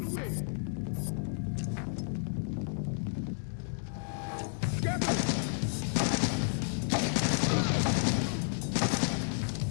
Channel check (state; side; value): silent; right; digital silence